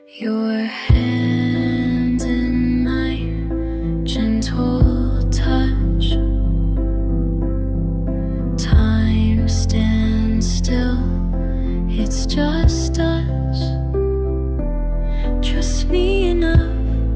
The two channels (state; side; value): identical; both; correlation 1.00